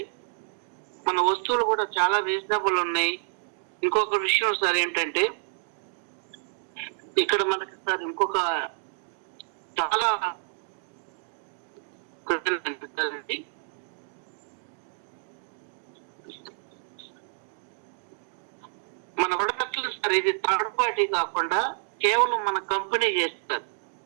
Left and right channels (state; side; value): silent; left; digital silence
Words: మన వస్తువులు కూడా చాలా రీజనబుల్ ఉన్నాయి. ఇంకొక విషయం సార్ ఏంటంటే ఇక్కడ మనకి సార్ ఇంకొక చాలా మన ప్రొడక్ట్లు సార్ ఇది థర్డ్ పార్టీ కాకుండా కేవలం మన కంపెనీ చేస్తారు.